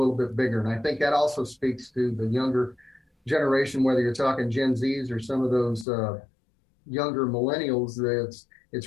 bit bigger. And I think that also speaks to the younger generation, whether you're talking Gen Zs or some of those younger millennials,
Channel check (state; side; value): drops out; right; at 5.9 s